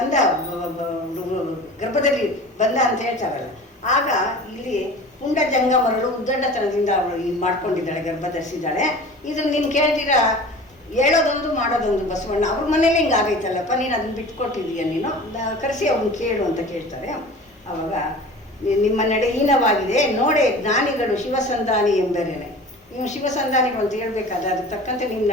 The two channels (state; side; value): normal; both; correlation 0.39